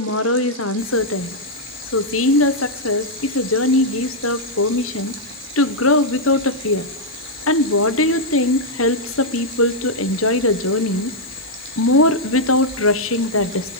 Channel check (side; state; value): both; normal; correlation -0.04